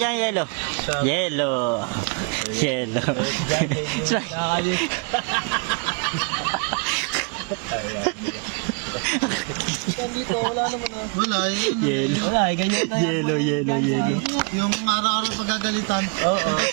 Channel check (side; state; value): left; quieter; 36.1 dB